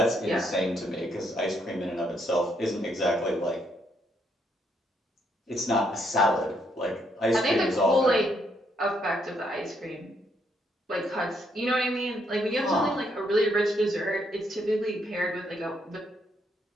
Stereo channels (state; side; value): normal; both; correlation 0.73